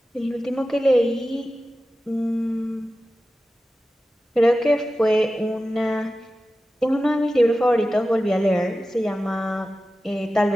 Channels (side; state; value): both; normal; correlation 0.94